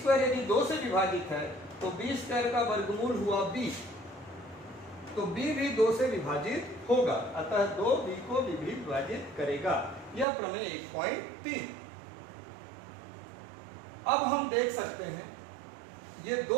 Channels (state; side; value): drops out; left; at 10.2 s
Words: यदि 2 से विभाजित है तो b स्क्वायर का वर्गमूल हुआ b, तो b भी 2 से विभाजित होगा, अतः 2 b को भी विभाजित करेगा। यह प्रमेय 1.3। अब हम देख सकते हैं ये